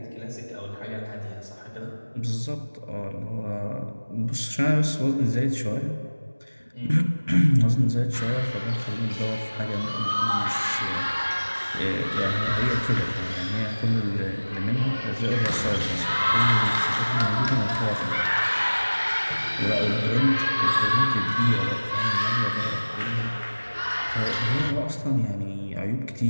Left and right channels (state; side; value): inverted; both; correlation -1.00